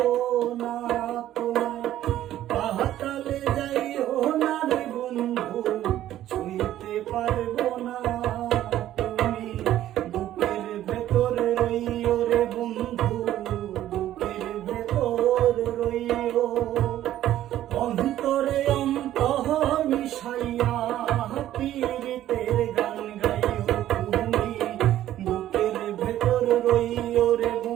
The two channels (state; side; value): quieter; left; 12.9 dB